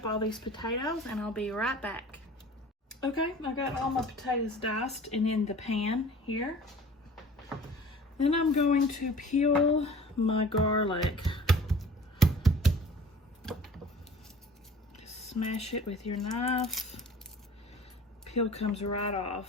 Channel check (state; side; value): normal; both; correlation 0.45